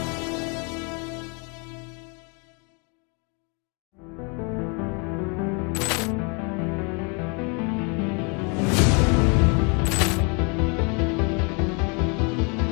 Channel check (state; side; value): quieter; right; 33.8 dB